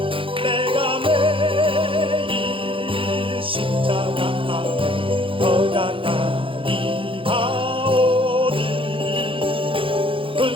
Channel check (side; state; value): left; late; 0.25 ms